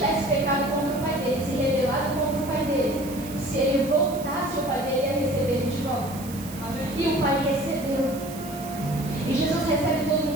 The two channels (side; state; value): right; noise; hiss, 15 dB below the sound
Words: pecado contra o pai dele, se rebelado contra o pai dele, se ele voltasse, o pai dele ia receber ele de volta. E o pai recebeu. E Jesus recebe todo